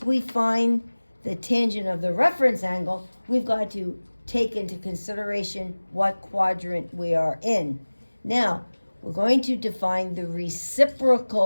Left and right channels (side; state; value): both; inverted; correlation -1.00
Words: we find the tangent of the reference angle, we've got to take into consideration what quadrant we are in. Now, we're going to define the